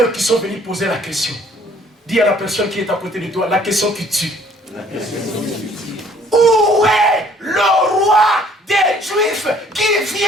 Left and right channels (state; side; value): normal; both; correlation 0.59